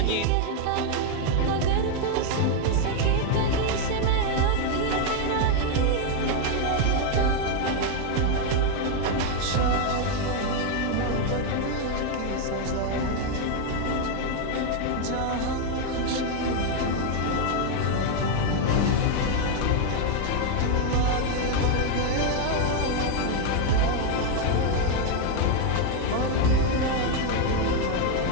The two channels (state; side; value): different; both; correlation 0.01